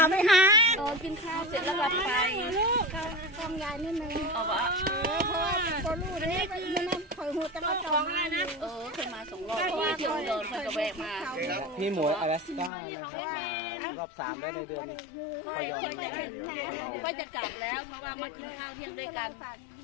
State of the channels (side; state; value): right; drops out; at 12.7 s